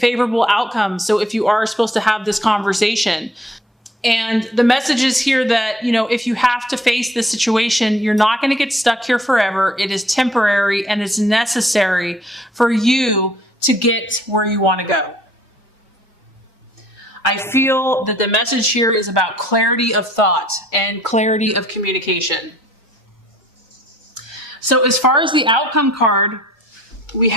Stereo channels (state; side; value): normal; both; correlation 0.59